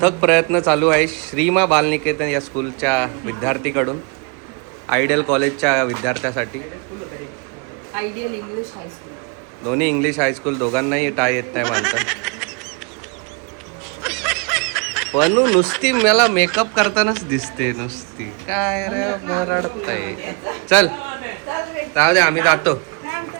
प्रयत्न चालू आहे श्रीमा बालनिकेतन या स्कूलच्या विद्यार्थीकडून. आयडियल कॉलेजच्या विद्यार्थ्यासाठी. Ideal English high school. दोन्ही इंग्लिश हायस्कूल, दोघांनाही टाय येत नाही बांधता. पण नुसती मला मेकअप करतानाच दिसते नुसती. काय रे मरडताय. चल जाऊ दे, आम्ही जातो.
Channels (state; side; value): quieter; left; 32.4 dB